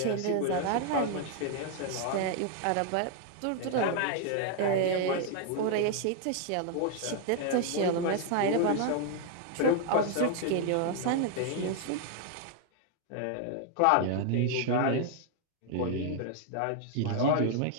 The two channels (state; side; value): different; both; correlation 0.00